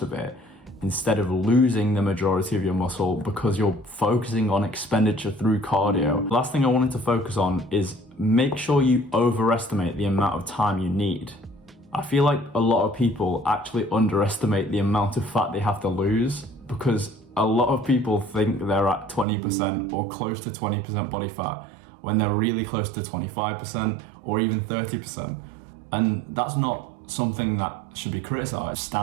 of it instead of losing the majority of your muscle because you're focusing on expenditure through cardio. Last thing I wanted to focus on is make sure you overestimate the amount of time you need. I feel like a lot of people actually underestimate the amount of fat they have to lose because a lot of people think they're at 20% or close to 20% body fat when they're really close to 25% or even 30%. And that's not something that should be criticized.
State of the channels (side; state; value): left; drops out; at 19.2 s